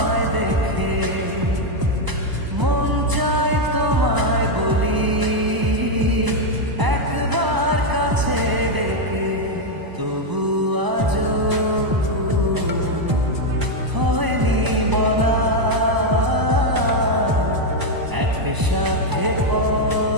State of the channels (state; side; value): late; left; 1.0 ms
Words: দেখে, মন চায় তোমায় বলি একবার কাছে ডেকে, তবু আজও হয়নি বলা একসাথে